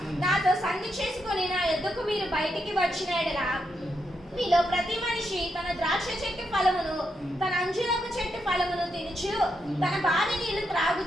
నాతో సంధి చేసుకొని నా యొద్దకు మీరు బయటికి వచ్చిన ఎడల మీలో ప్రతి మనిషి తన ద్రాక్ష చెట్టు ఫలమును తన అంజూరపు చెట్టు ఫలమును తినుచు తన బావి నీళ్లు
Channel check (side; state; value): both; normal; correlation 0.82